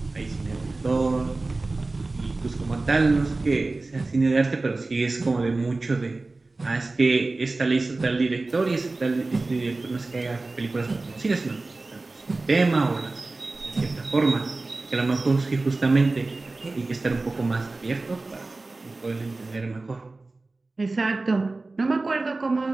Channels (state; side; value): quieter; left; 3.3 dB